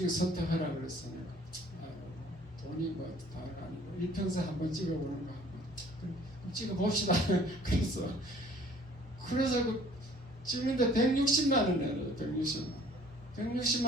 선택하라 그랬어요. 돈이 뭐 다 아니고 일평생 한번 찍어보는 거 한번 찍어봅시다. 그래서 그 찍는데 160만 원 내요. 160만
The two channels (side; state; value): both; normal; correlation 0.54